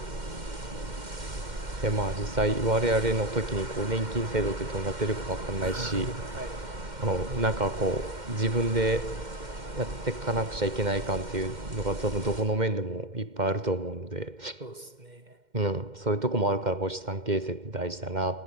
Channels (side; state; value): left; late; 2.1 ms